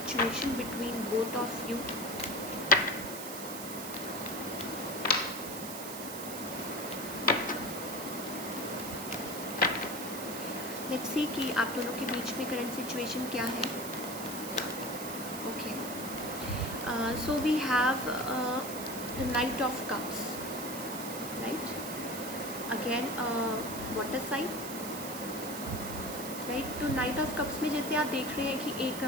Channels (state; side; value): noise; right; hiss, 8 dB below the sound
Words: between both of you. Let's see कि आप दोनों के बीच में current situation क्या है. Okay. So we have the Knight of Cups, right? Again, water sign. Right. तो नाइट ऑफ कप्स में जैसे आप देख रहे हैं कि एक